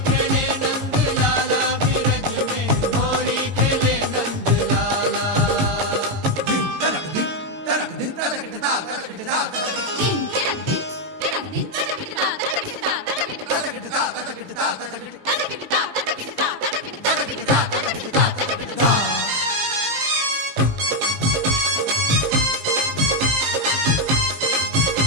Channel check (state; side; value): late; left; 19 ms